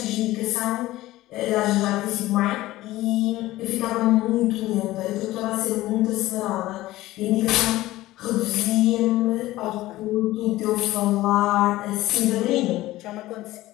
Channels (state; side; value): quieter; right; 16.9 dB